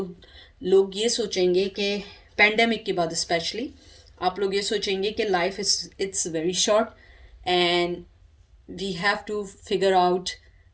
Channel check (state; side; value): identical; both; correlation 1.00